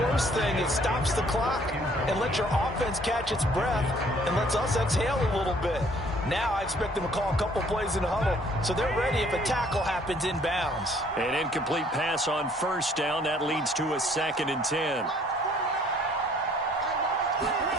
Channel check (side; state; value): both; normal; correlation 0.60